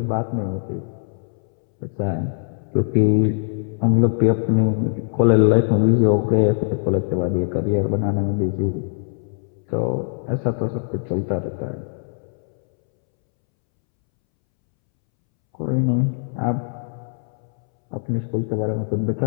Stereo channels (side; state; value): right; silent; 64 dB below the other